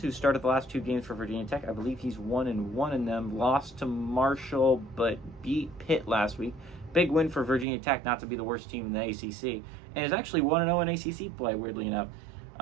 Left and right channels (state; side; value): drops out; left; at 7.7 s